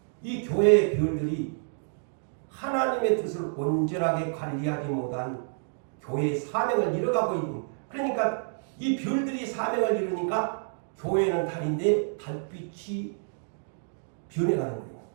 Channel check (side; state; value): left; silent; digital silence